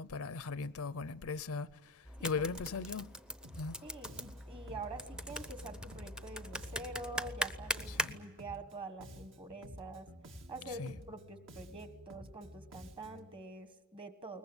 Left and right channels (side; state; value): both; normal; correlation 0.26